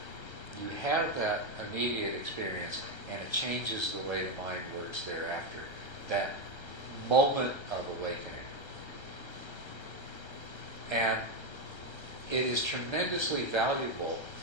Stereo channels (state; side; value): late; right; 1.3 ms